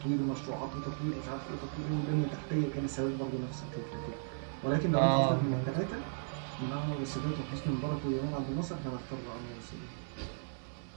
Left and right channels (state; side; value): silent; left; digital silence